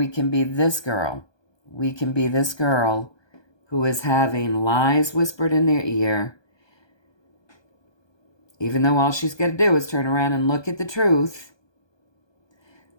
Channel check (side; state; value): right; late; 1.2 ms